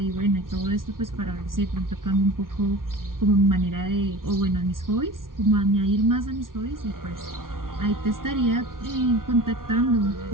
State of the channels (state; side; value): late; left; 0.91 ms